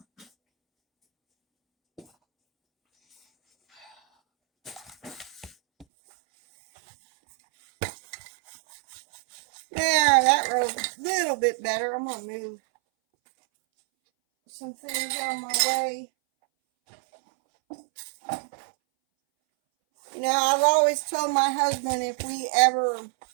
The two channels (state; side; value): drops out; left; at 5.9 s